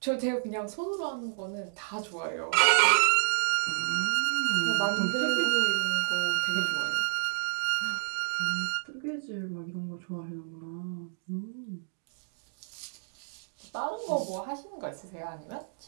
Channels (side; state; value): left; silent; digital silence